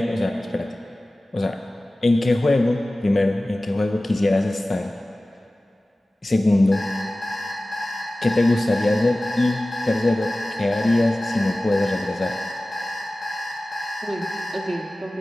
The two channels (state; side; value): normal; both; correlation 0.97